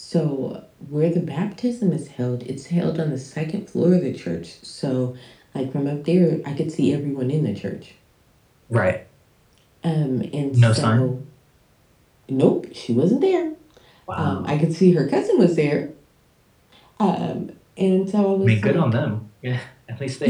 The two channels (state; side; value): identical; both; correlation 1.00